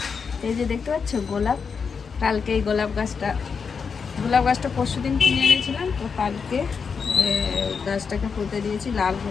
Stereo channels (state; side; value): quieter; right; 5.8 dB